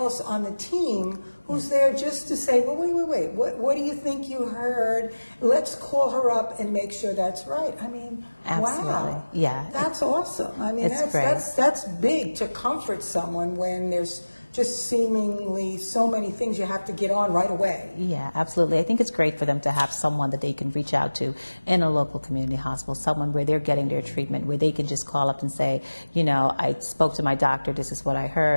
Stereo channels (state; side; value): inverted; both; correlation -1.00